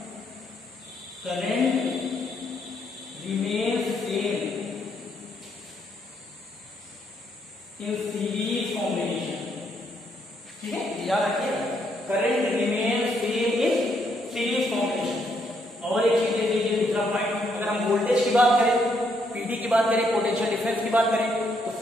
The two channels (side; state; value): both; normal; correlation 0.74